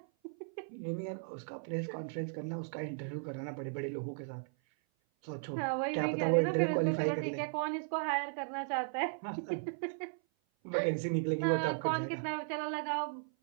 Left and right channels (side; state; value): left; silent; 54 dB below the other